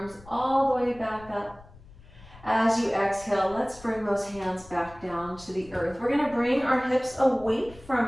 all the way back up. As you exhale, let's bring those hands back down to the earth. We're going to bring our hips away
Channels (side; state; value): left; noise; rumble, 22 dB below the sound